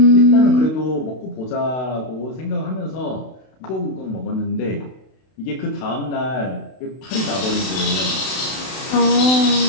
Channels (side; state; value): right; late; 32 ms